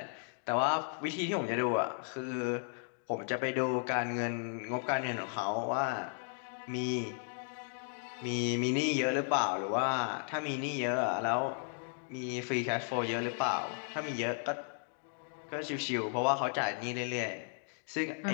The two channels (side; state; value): right; silent; 54 dB below the other